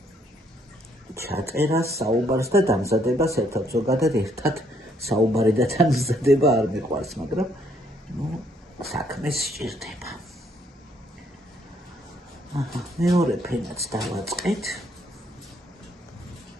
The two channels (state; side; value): normal; both; correlation 0.69